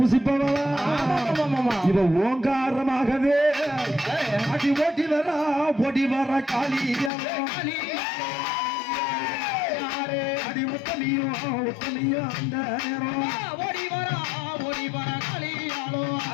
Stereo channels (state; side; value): drops out; right; at 7.1 s